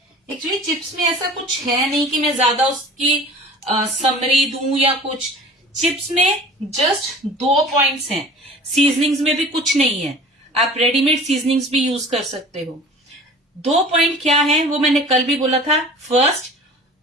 एक्चुअली चिप्स में ऐसा कुछ है नहीं कि मैं ज्यादा उसकी समरी दूं या कुछ। चिप्स में जस्ट 2 पॉइंट्स हैं, सीजनिंग्स में भी कुछ नहीं है। आप रेडीमेड सीजनिंग्स भी यूज कर सकते हो। 2 पॉइंट क्या है वो मैंने कल भी बोला था। फर्स्ट,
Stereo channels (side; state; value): both; normal; correlation 0.42